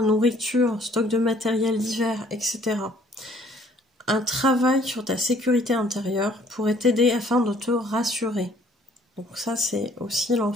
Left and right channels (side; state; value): both; normal; correlation 0.60